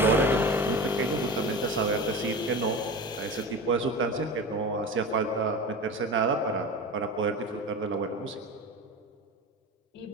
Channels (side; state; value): both; normal; correlation 0.30